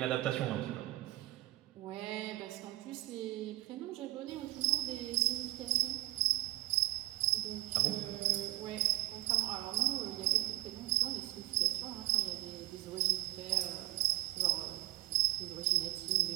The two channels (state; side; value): quieter; left; 18.4 dB